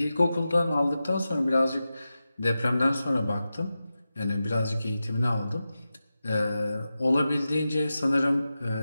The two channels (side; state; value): both; inverted; correlation -0.92